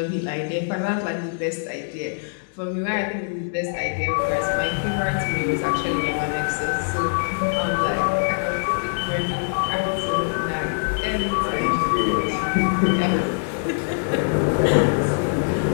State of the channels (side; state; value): right; silent; digital silence